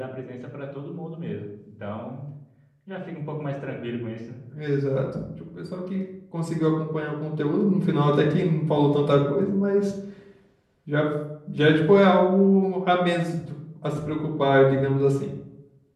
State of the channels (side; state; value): both; identical; correlation 1.00